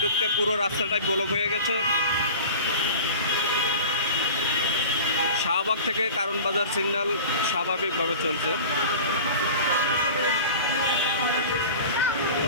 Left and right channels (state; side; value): inverted; both; correlation -0.38